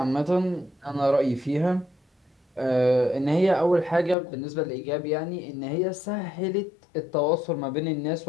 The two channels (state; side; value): drops out; right; at 4.2 s